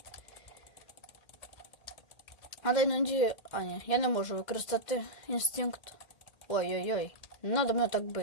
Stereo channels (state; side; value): late; right; 2.1 ms